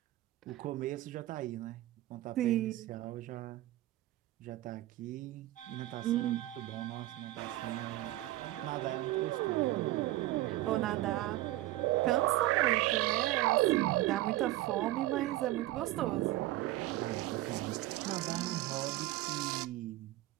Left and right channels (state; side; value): quieter; left; 16.4 dB